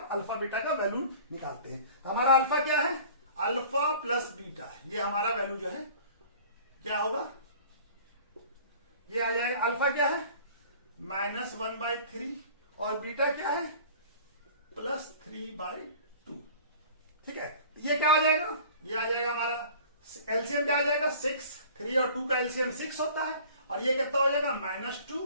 अल्फा बीटा का वैल्यू निकालते हैं। तो हमारा अल्फा क्या है, अल्फा प्लस बीटा, ये हमारा वैल्यू जो है क्या होगा, ये आ जाएगा अल्फा क्या है -1/3 और बीटा क्या है +3/2। ठीक है, ये क्या आ जाएगा, ये आ जाएगा हमारा एलसीएम क्या आ जाएगा 6, 3 और 2 का एलसीएम 6 होता है, और ये कितना हो जाएगा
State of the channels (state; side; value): inverted; both; correlation -0.46